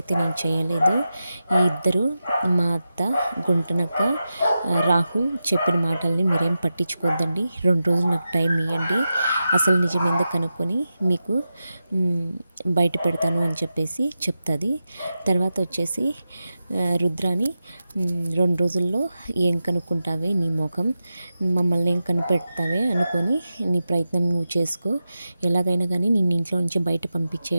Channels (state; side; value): inverted; both; correlation -0.91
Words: నేను చేయలేదు. ఈ ఇద్దరు మా అత్త గుంటనక్క రాహుల్ చెప్పిన మాటల్ని మీరేం పట్టించుకోద్దండి, 2 రోజులు నాకు టైం ఇవ్వండి, అసలు నిజం ఎందుకు కనుక్కొని మీకు బయట పెడతాను అని చెప్పేసి చెప్తుంది. తర్వాత వచ్చేసి రుద్రాని 2 రోజుల్లో ఏం కనుక్కుంటావే నీ ముఖం, మమ్మల్ని ఏం కనిపెడతావే అనుకొని నీ ప్రయత్నం నువ్వు చేసుకో, ఎలాగైనా కానీ నిన్ను ఇంట్లో నుంచి బయట